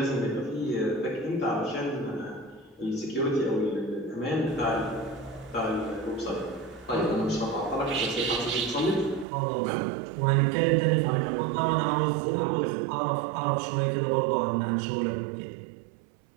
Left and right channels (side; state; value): left; drops out; at 9.2 s